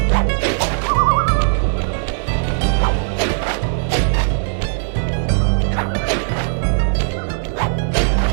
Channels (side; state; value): left; silent; digital silence